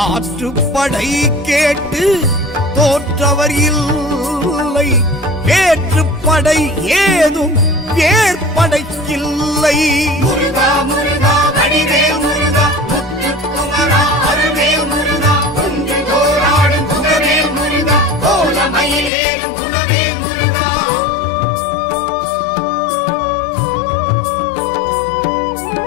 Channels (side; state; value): right; drops out; at 19.1 s